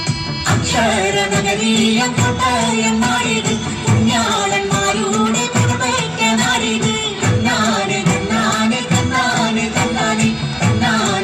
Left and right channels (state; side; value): identical; both; correlation 1.00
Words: അക്ഷരനഗരീയ കോട്ടയം നാടിത്, കുഞ്ഞാളന്മാരുടെ പുറമേറ്റ നാടിത്. തന്നാനെ തന്നാനെ തന്നാനെ തന്നാനെ